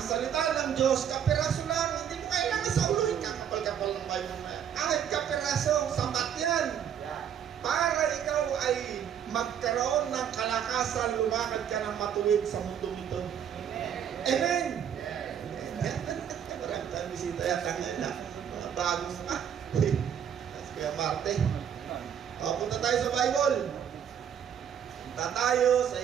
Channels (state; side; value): quieter; left; 8.8 dB